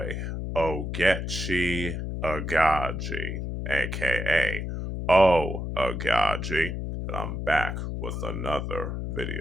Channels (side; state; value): left; noise; hum, 4 dB below the sound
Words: Oaghaji, aka Oaghaji. I'm back with another